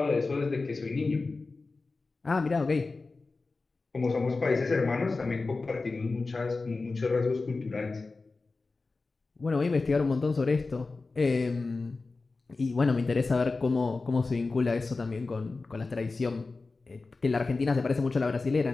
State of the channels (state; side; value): quieter; right; 3.8 dB